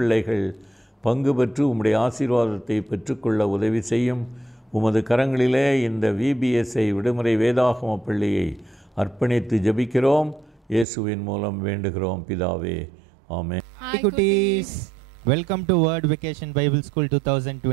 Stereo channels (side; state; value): left; drops out; at 10.9 s